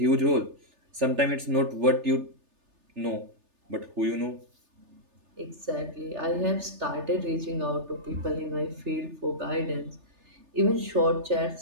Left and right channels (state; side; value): late; left; 3.3 ms